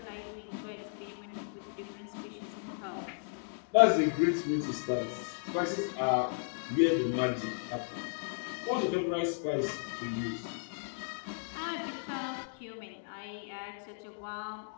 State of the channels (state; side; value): silent; right; digital silence